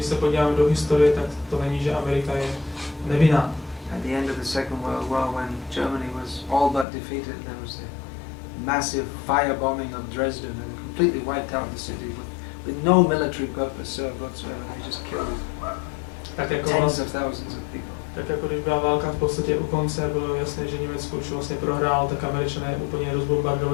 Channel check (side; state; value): right; drops out; at 6.9 s